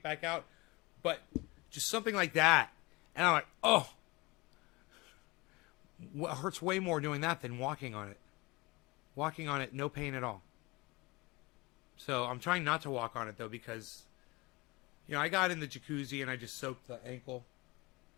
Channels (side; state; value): right; quieter; 23.9 dB